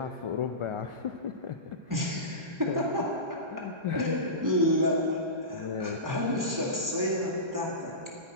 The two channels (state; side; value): late; left; 1.3 ms